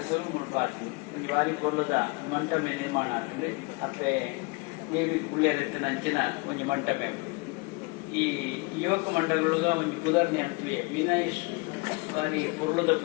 ಮುಡ್ಪಾತು ಒಂದು ವಾರಿ ಕೊಲ್ಲದ ಮಂಟಮೆ ನಿರ್ಮಾಣ ಆಗ್ತದೆ ಅಪ್ಪೆ ದೇವಿ ಕುಳ್ಳೆರತ್ತ ನಂಚಿನ ಒಂದು ಮಂಟಮೆ ಈ ಯುವಕ ಮಂಡಲಗಳಗ ಒಂದು ಪುದರ್ನಿ ಅಂತೀವಿ ವಿನಯ್ ಬಾರಿ ಕೊರ್ಲದ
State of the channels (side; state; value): right; quieter; 28.2 dB